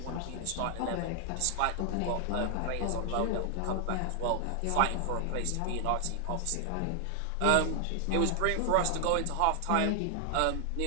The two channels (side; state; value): both; different; correlation 0.00